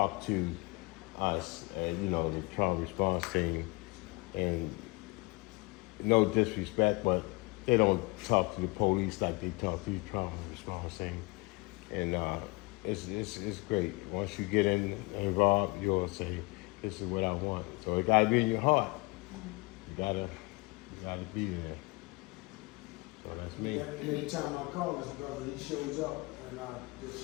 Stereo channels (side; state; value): right; quieter; 26.0 dB